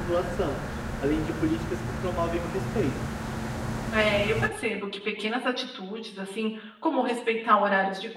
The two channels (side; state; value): both; identical; correlation 1.00